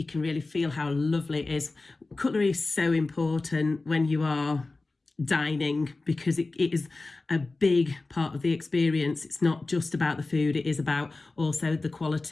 feel how lovely it is. Cutlery is so important when you are dining, because it is a big part of the experience. It's not just about the food, it is about also the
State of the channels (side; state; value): right; quieter; 3.4 dB